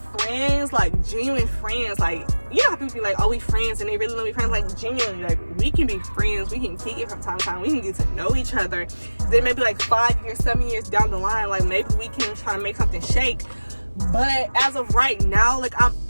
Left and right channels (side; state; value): both; inverted; correlation -1.00